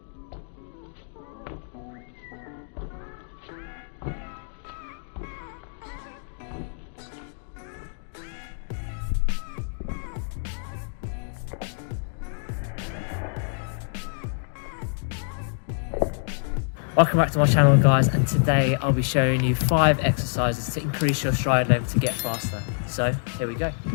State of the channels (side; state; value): right; silent; digital silence